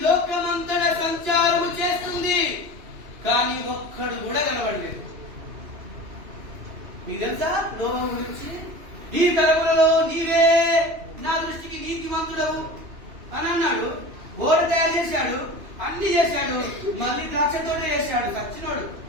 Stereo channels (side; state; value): left; late; 2.9 ms